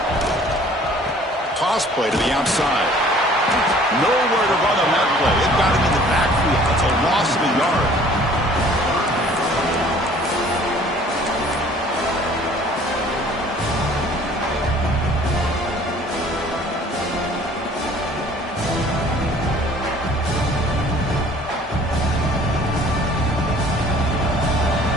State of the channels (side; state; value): both; normal; correlation 0.53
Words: Toss play to the outside. Nowhere to run on that play. It got him in the backfield. That's a loss of a yard.